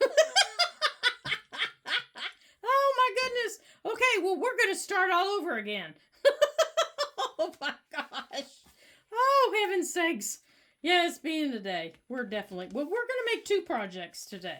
Goodness. Okay, well, we're going to start all over again. Oh, my gosh. Oh, heaven's sakes. Yeah, it's being today. We're going to make two projects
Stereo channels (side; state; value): both; identical; correlation 1.00